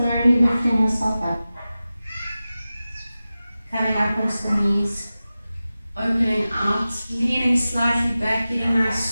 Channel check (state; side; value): inverted; both; correlation -0.95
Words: lifting yourself up, coming up onto the knees, opening out, leaning slightly back, getting a